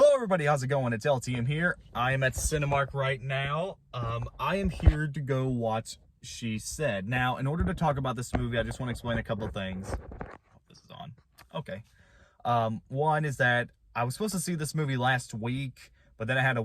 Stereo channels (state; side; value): identical; both; correlation 1.00